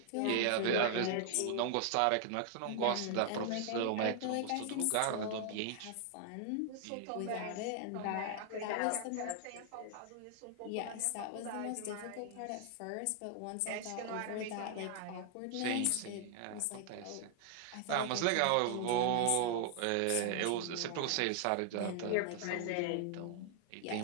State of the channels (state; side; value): different; both; correlation 0.00